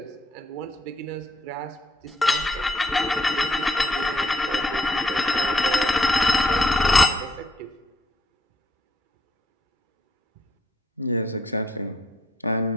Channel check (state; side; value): normal; both; correlation 0.72